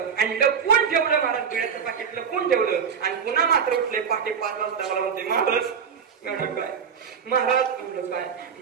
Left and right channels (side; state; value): left; quieter; 6.9 dB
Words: आणि लपून ठेवलं महाराज बिड्याचं पाकिट लपून ठेवलं आणि पुन्हा मात्र उठले पहाटे 5 वाजता मला म्हणते महाराज काय महाराज म्हणलं काय